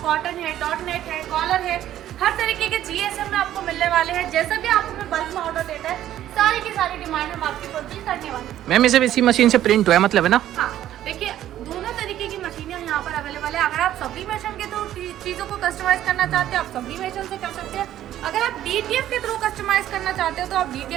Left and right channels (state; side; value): quieter; left; 12.3 dB